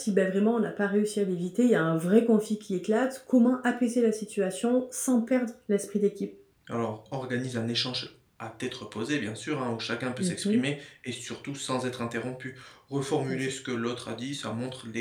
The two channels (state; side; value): identical; both; correlation 1.00